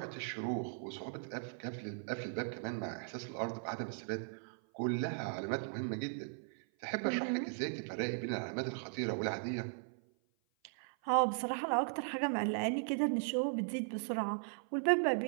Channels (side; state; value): left; silent; 53 dB below the other